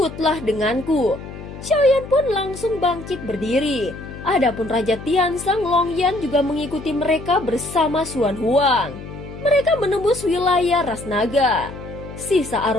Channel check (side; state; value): left; noise; hum, 12 dB below the sound